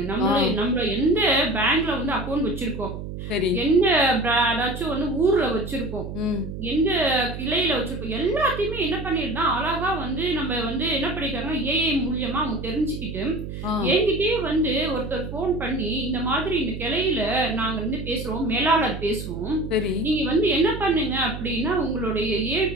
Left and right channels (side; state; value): right; noise; hum, 8 dB below the sound